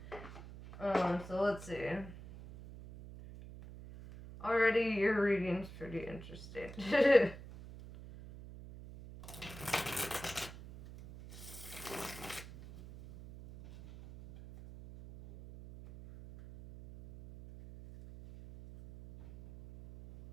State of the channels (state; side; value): noise; right; hum, 14 dB below the sound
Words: So let's see. Already your reading's pretty interesting.